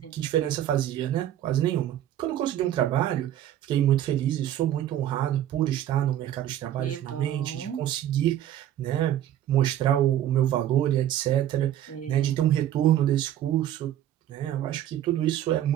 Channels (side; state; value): left; quieter; 11.8 dB